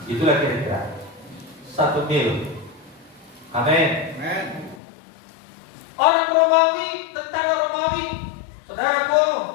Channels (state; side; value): drops out; right; at 4.8 s